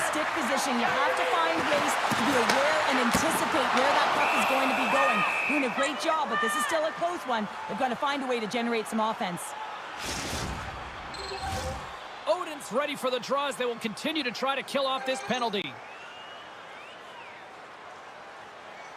stick position. You have to find ways to be aware and anticipate where that puck is going to be going. Doing a great job, but this is still a close one. They've got to find a way to generate some offense. Odin's ready for the draws. They will continue to try to kill off this penalty.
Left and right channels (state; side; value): identical; both; correlation 1.00